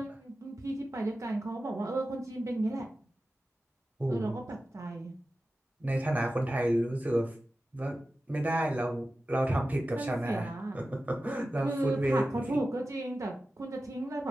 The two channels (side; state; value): both; normal; correlation 0.94